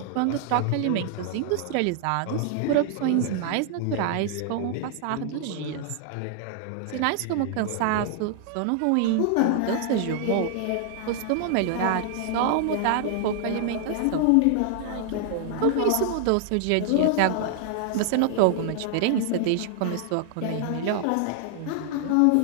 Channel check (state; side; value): different; both; correlation 0.00